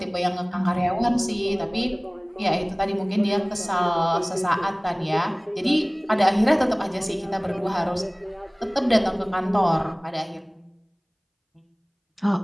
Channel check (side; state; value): both; identical; correlation 1.00